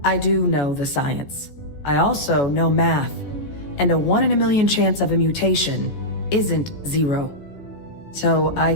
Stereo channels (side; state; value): right; late; 14 ms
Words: I do know the science. I also know math, and a 1 in a million chance of a mutation isn't 0. So I